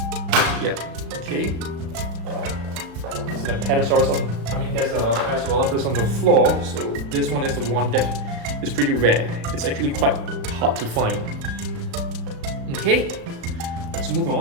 Yeah, okay. There's a Parasaurolophus on the floor, so this one is the one that is pretty rare. It's actually quite hard to find. Okay, let's move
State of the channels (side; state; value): left; late; 36 ms